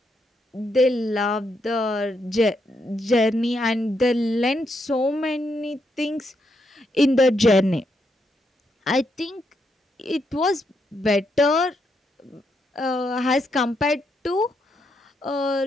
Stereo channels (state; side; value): normal; both; correlation 0.79